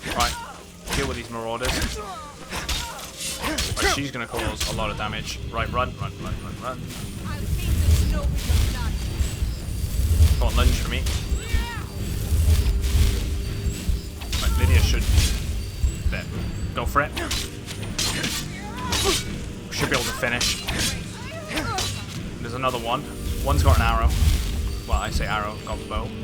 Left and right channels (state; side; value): identical; both; correlation 1.00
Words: She's gonna cause a lot of damage. Right, run. Come on, lunge for me. Right, Lydia should... There. Go for it. Should be able to finish. There's another one. One's got an arrow. Well, I say arrow, got the bow.